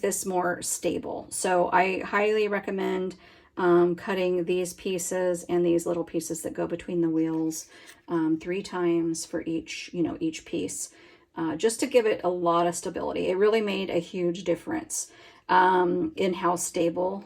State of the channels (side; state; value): both; identical; correlation 1.00